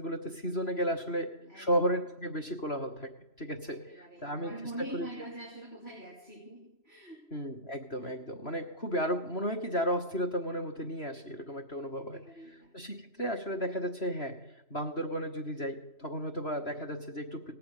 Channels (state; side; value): late; right; 3.0 ms